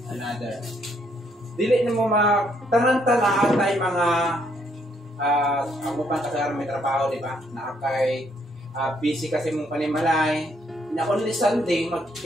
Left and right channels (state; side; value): normal; both; correlation 0.71